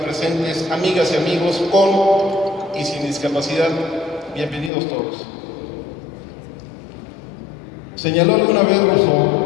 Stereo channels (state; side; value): drops out; right; at 4.7 s